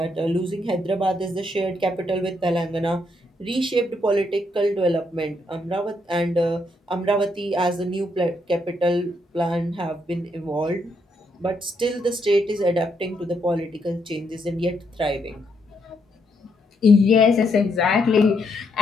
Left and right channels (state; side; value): normal; both; correlation 0.76